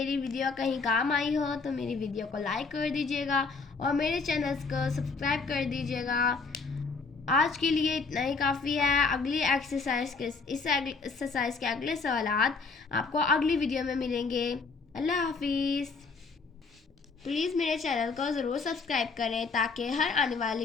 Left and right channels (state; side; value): quieter; right; 4.4 dB